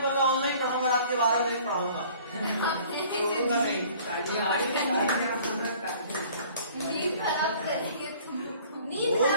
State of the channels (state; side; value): inverted; both; correlation -0.52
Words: पड़ा ऑनलाइन पढ़ाऊंगा, रात के 12 बजे पढ़ाऊंगा, छोड़ूंगा नहीं। नींद खराब करेंगे तुम। नींद वो